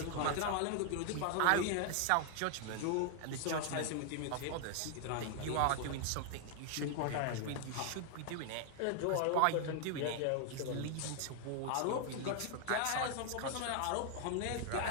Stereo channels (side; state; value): both; different; correlation 0.00